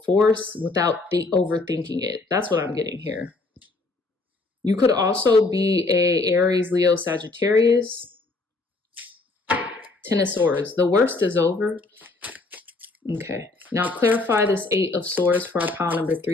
force without overthinking it. That's what I'm getting here. You could also be a Aries, Leo, Sagittarius. Ten of Swords. The worst is over. Okay. Now clarify this Eight of Swords for our pile number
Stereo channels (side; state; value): right; quieter; 3.4 dB